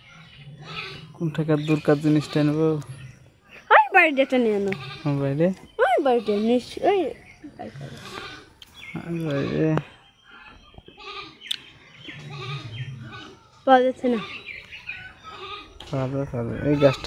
কোন টাকার দূরকার জিনিসটা নেবো? ওই বাড়িটা নিয়ে আনো। বাইরে ওই বাড়িটা নিশ্চয়ই বাইরে পাওয়া যাচ্ছে না। পাবে পাবে, এই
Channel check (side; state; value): both; identical; correlation 1.00